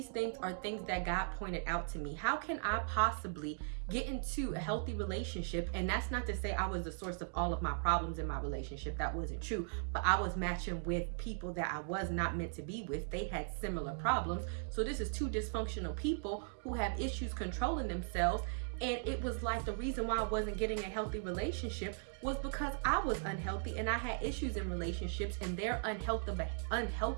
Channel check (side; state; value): left; silent; digital silence